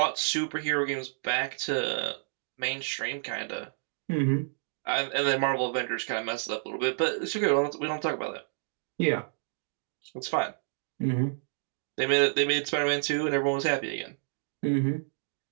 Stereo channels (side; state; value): left; silent; digital silence